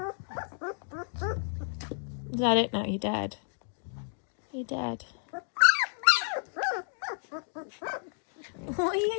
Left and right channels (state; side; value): silent; right; digital silence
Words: Is that it now? You're dead. You're dead. What are